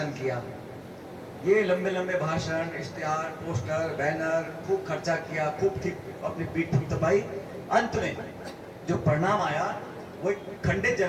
किया, ये लंबे लंबे भाषण, इश्तिहार, पोस्टर, बैनर, खूब खर्चा किया, खूब अपनी पीठ थपथपाई। अंत में जो परिणाम आया वो एक खंडित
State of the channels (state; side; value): identical; both; correlation 1.00